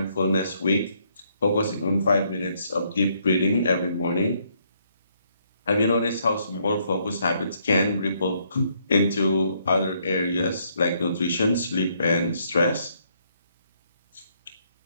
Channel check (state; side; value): inverted; both; correlation -0.71